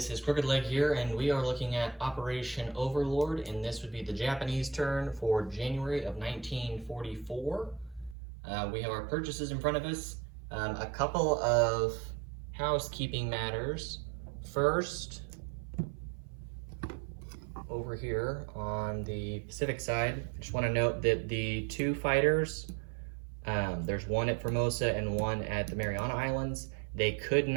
is Crooked Leg here, and we are looking at Operation Overlord, and this would be the Japanese turn for January of 1944. We have our purchases in front of us. A couple of housekeeping matters. First, over here on the Pacific side, I just want to note that the two fighters, there's one at Formosa and one at the Mariana Islands. They could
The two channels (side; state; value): left; drops out; at 8.2 s